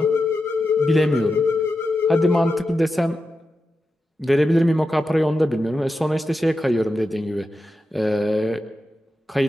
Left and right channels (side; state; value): both; normal; correlation 0.90